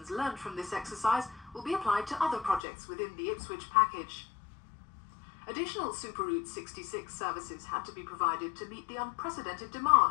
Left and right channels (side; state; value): right; drops out; at 2.6 s